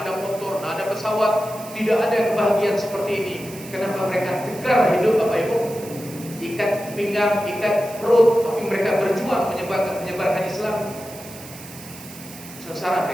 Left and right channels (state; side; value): noise; right; hiss, 16 dB below the sound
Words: ada motor, nah ada pesawat. Tidak ada kebahagiaan seperti ini. Kenapa mereka tegar hidup, Bapak Ibu? Ikat pinggang, ikat perut, tapi mereka berjuang menyebarkan Islam. Sengsara